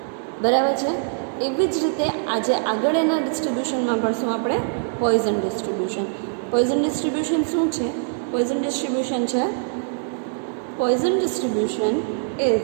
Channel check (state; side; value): silent; left; digital silence